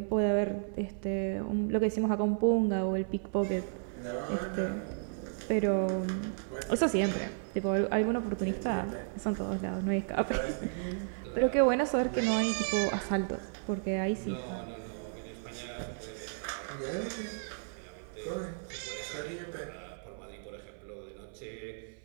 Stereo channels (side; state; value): left; silent; 56 dB below the other